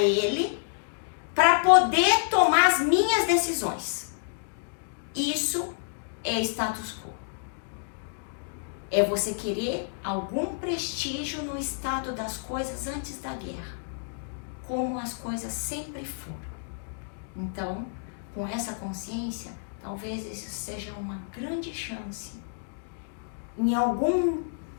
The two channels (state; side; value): silent; right; digital silence